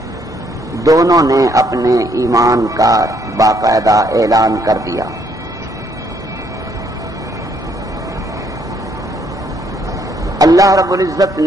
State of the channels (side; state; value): both; normal; correlation 0.69